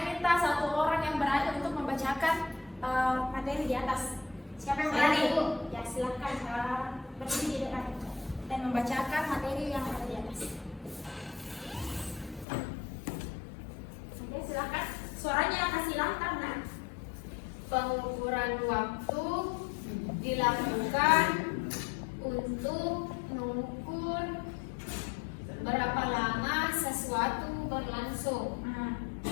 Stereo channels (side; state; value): right; drops out; at 12.5 s